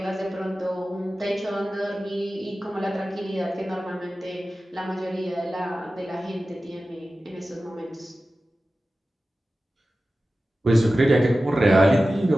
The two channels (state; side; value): normal; both; correlation 0.95